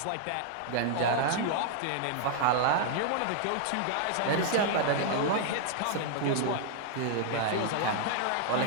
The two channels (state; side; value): different; both; correlation -0.01